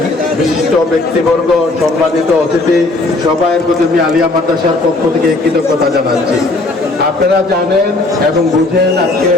বিশিষ্ট ব্যক্তিবর্গ, সম্মানিত অতিথি, সবাইয়ের প্রতি আমি আলিয়া মাদ্রাসার পক্ষ থেকে কৃতজ্ঞতা জানাচ্ছি। আপনারা জানেন এবং বুঝেন আজকে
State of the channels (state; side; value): quieter; right; 3.0 dB